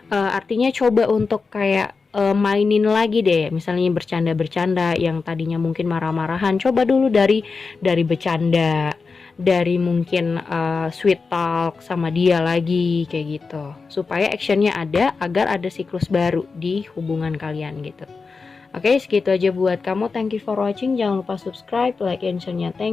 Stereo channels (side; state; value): right; quieter; 4.5 dB